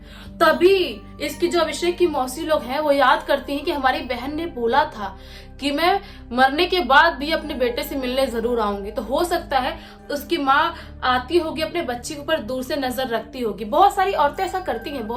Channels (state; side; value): identical; both; correlation 1.00